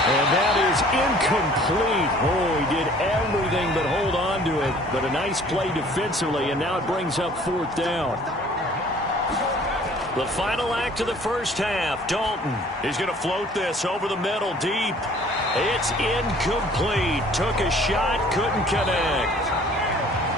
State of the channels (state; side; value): normal; both; correlation 0.53